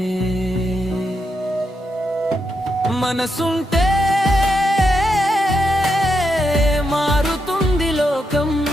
మనసుంటే మారుతుంది లోకం,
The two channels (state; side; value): normal; both; correlation 0.83